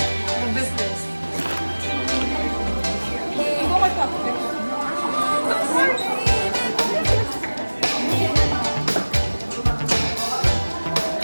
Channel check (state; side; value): inverted; both; correlation -1.00